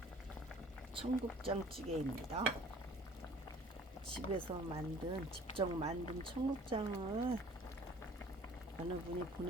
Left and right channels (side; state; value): both; normal; correlation 0.52